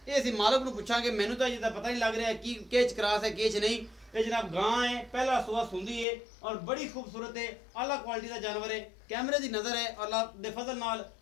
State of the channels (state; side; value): drops out; right; at 6.1 s